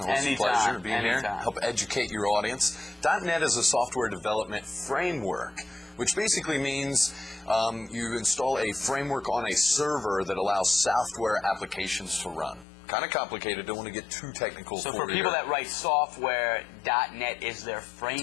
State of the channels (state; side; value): drops out; right; at 12.7 s